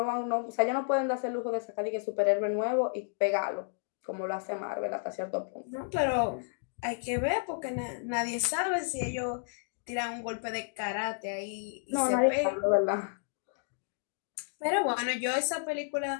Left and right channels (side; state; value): right; silent; digital silence